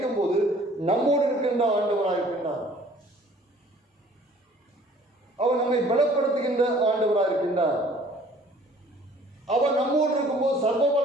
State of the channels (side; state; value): both; normal; correlation 0.54